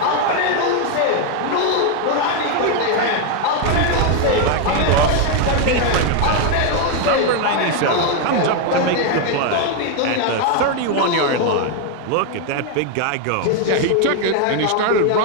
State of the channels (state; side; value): different; both; correlation 0.01